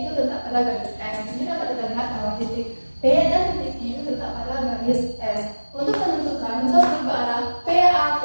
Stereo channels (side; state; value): both; inverted; correlation -1.00